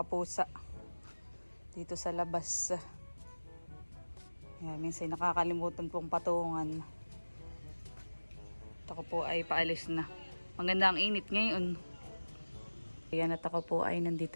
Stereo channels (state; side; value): inverted; both; correlation -1.00